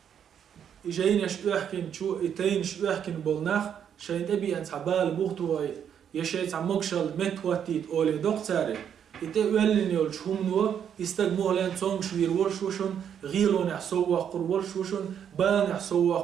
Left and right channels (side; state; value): left; quieter; 8.6 dB